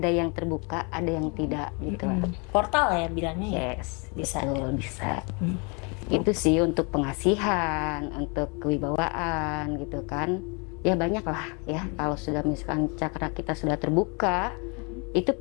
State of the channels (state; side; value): quieter; right; 32.5 dB